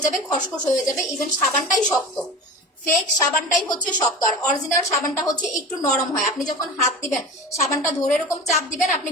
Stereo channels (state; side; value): normal; both; correlation 0.32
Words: যাবে, খসখস হয়ে যাবে, ইভেন সাবানটাই শক্ত। ফেক সাবানটাই হচ্ছে শক্ত, আর অরিজিনাল সাবানটা হচ্ছে একটু নরম হয়। আপনি যখন হাত দিবেন, সাবানটা ধরে এরকম চাপ দিবেন, আপনি